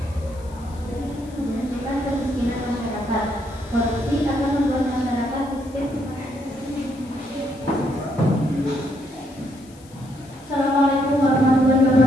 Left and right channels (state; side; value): noise; left; hiss, 26 dB below the sound